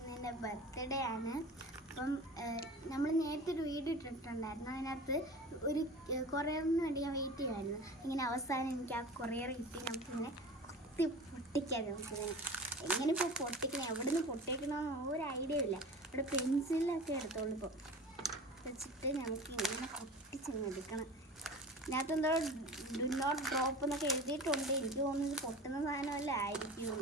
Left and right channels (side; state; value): both; normal; correlation 0.37